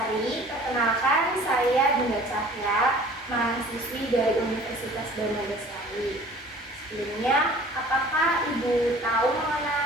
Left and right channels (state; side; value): normal; both; correlation 0.48